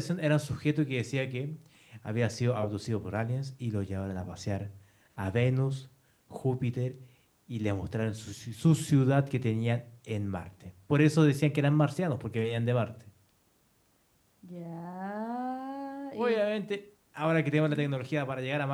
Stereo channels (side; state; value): both; identical; correlation 1.00